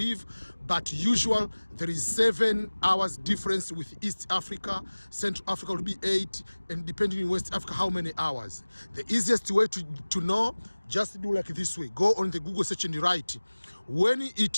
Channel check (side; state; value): both; inverted; correlation -1.00